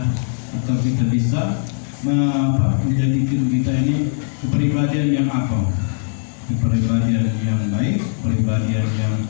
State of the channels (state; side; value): silent; right; digital silence